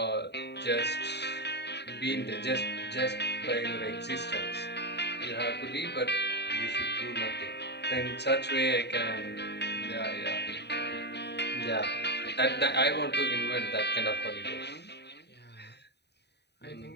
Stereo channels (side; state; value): right; late; 0.49 ms